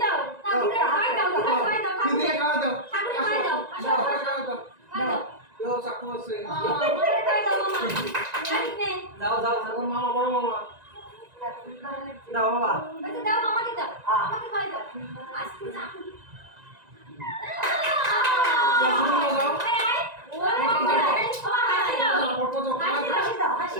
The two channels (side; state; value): left; late; 1.9 ms